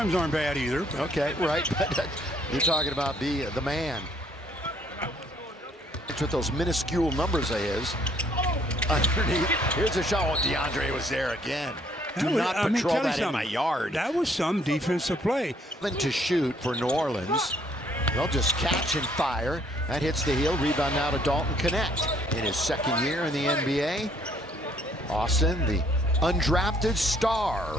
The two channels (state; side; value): normal; both; correlation 0.64